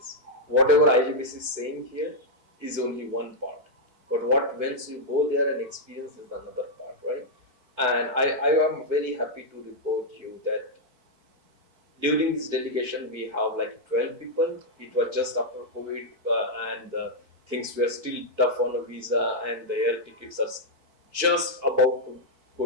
Whatever IJBC is saying here is only one part. But what once you go there and experience is another part, right? And I am very happy to report you that during this delegation we have like 12 people. It was just after COVID, and things were still tough on a visa, and the air tickets are just about to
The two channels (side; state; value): left; late; 4.5 ms